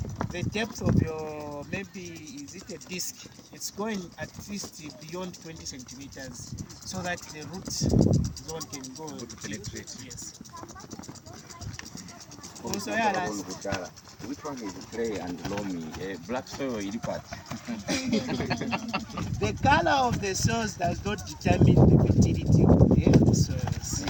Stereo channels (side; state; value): both; identical; correlation 1.00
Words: the depth of your, maybe is it a disc, it's going at least beyond 20 centimeters, so that the root zone can go to penetrate. Yes. Also, which one is clay and loamy? Black soil or part? The color of the soils does not determine the fertility of the soils.